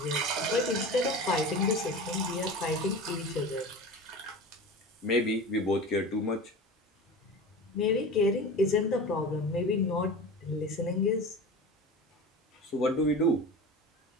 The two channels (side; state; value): both; normal; correlation 0.32